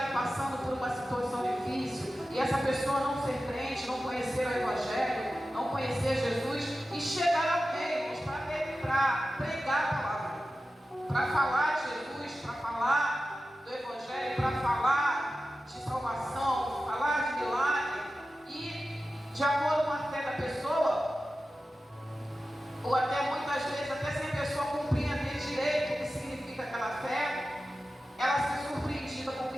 passando por uma situação difícil, e essa pessoa não ser crente, não conhecer o Evangelho, não conhecer Jesus, e chegar alguém para pregar a palavra, para falar de Jesus, para falar do Evangelho, para falar de salvação, falar de milagre, e de acordo com a fé da pessoa, ou até muitas vezes, até sem a pessoa compreender direito o que significa aquela fé, ela ser surpreendida com o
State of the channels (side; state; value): both; normal; correlation 0.94